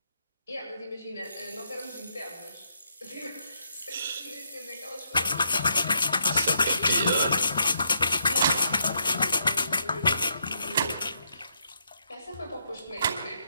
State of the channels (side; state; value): both; inverted; correlation -0.76